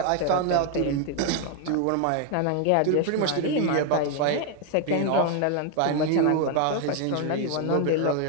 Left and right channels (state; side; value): different; both; correlation 0.00